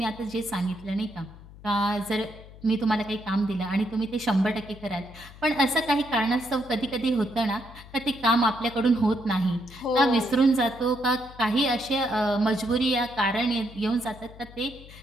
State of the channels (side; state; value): left; noise; hum, 19 dB below the sound